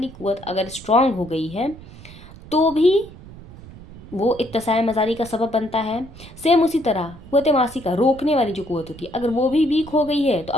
कुव्वत अगर स्ट्रांग हो गई है तो भी वो इत्तिसाए मजारी का सबब बनता है। सेम उसी तरह कुव्वत मासिका रोकने वाली जो कुव्वत होती है, अगर वो भी वीक हो गई है तो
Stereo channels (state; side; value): noise; right; rumble, 18 dB below the sound